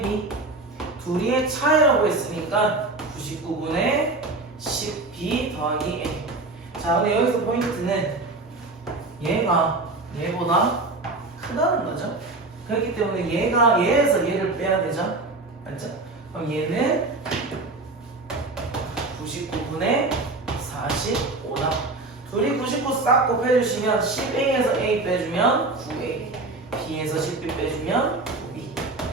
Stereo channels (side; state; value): left; quieter; 3.2 dB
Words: B 둘이의 차이라고 했으니까 99분의 10B 더하기 A. 자, 근데 여기서 포인트는 얘가 얘보다 크다는 거죠. 그렇기 때문에 얘가 얘에서 얘를 빼야 되죠. 맞죠? 그럼 얘는 99분의 45다. 둘이 99 싹 곱해주시면 10A에서 A 빼주면 9A, B에서 10B 빼주면 9B.